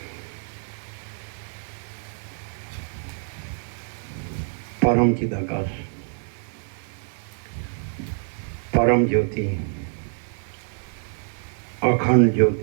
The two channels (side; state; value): left; silent; 61 dB below the other